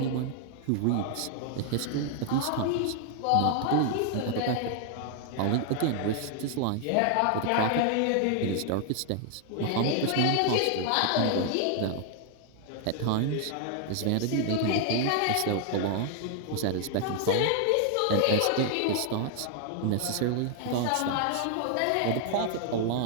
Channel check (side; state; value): both; different; correlation 0.00